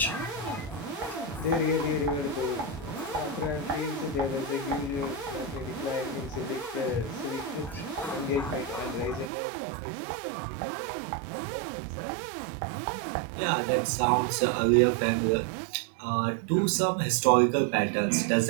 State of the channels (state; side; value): drops out; left; at 9.3 s